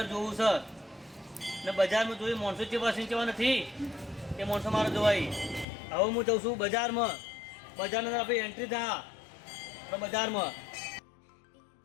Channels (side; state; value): right; drops out; at 5.7 s